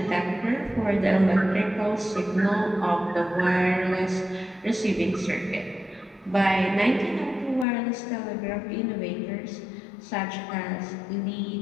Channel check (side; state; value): right; drops out; at 7.7 s